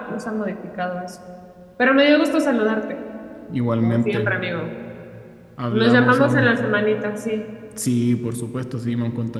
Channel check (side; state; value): both; identical; correlation 1.00